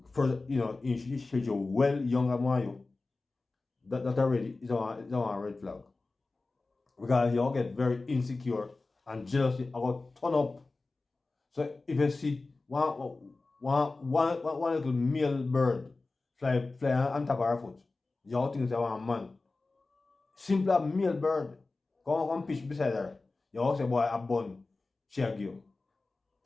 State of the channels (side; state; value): right; quieter; 3.5 dB